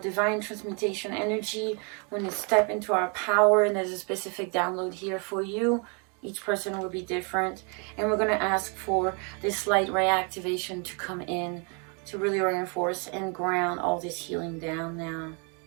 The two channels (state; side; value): quieter; left; 35.8 dB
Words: transmutation energy. When you step into our power, and there's a specific download here for you. Each person will be different. And we're going to ask for this light ray activation to come in to really reinforce and ground all this healing down now.